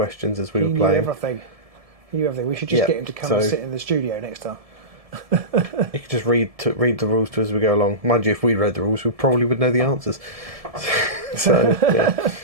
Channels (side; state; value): left; late; 1.7 ms